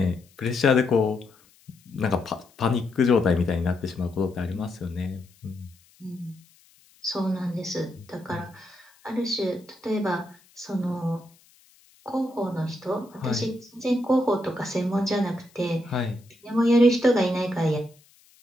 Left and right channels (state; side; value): noise; left; hiss, 30 dB below the sound